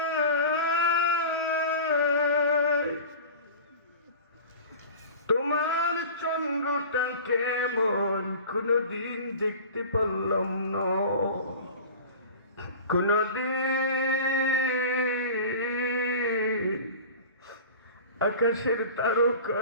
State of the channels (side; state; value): both; inverted; correlation -0.37